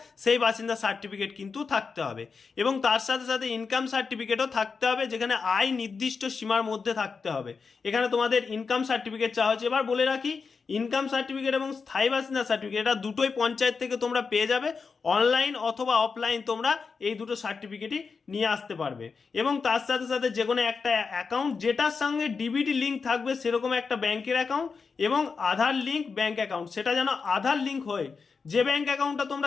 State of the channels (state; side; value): quieter; right; 5.1 dB